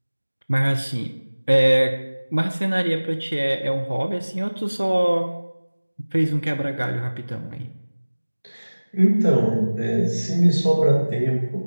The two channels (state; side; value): inverted; both; correlation -1.00